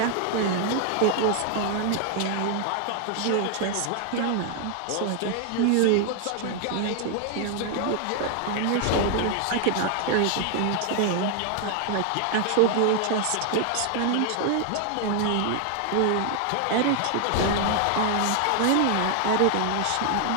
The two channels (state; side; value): different; both; correlation 0.00